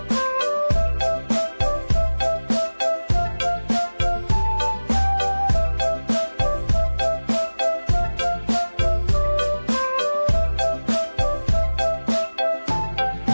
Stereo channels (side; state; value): both; inverted; correlation -1.00